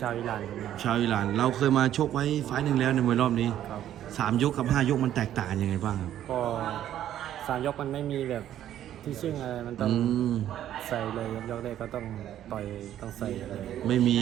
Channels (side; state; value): left; quieter; 11.5 dB